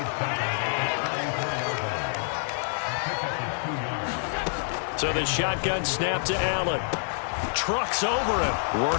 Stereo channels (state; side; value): silent; right; digital silence